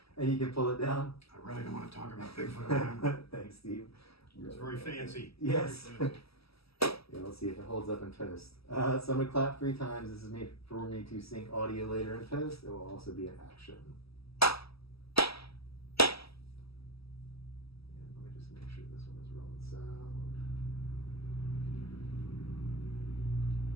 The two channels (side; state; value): right; late; 0.76 ms